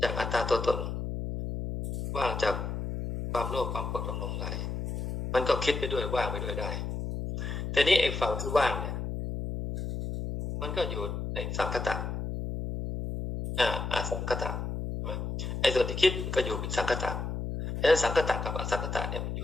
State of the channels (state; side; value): noise; left; hum, 4 dB below the sound